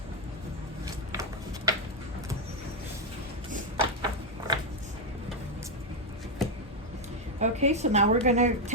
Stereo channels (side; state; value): both; normal; correlation 0.03